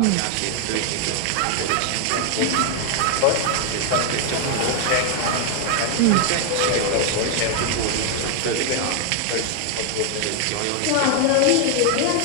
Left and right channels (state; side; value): different; both; correlation 0.00